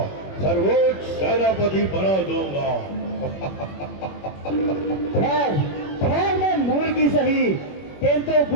सर्वोच्च सेनापति बना दूंगा। खैर खैर मैं मूल की सही, किंतु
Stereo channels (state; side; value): late; right; 21 ms